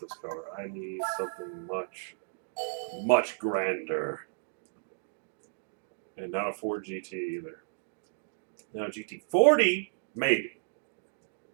car. I need something much grander. And not a Ford GT either. Now, GT40, maybe.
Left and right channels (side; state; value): left; silent; digital silence